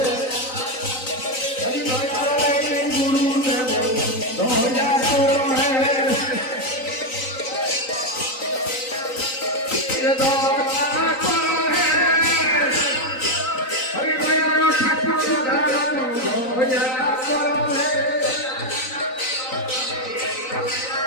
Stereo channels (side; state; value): right; late; 3.9 ms